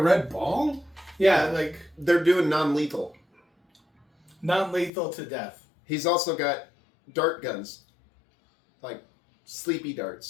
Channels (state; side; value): drops out; right; at 4.9 s